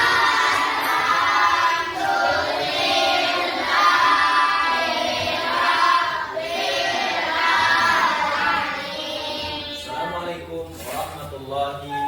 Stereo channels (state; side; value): identical; both; correlation 1.00